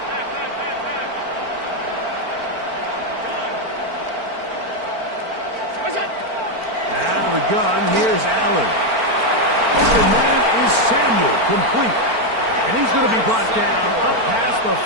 Out of the gun, here's Allen. Open man is Samuel, complete. And he's going to be brought down up past the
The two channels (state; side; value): late; left; 4.4 ms